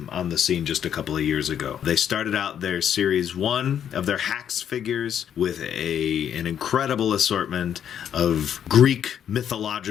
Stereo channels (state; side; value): quieter; right; 9.1 dB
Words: on the scene just a couple of years ago. They started out their Series 1 of their H.A.C.K.S figures with an incredible assortment of Greek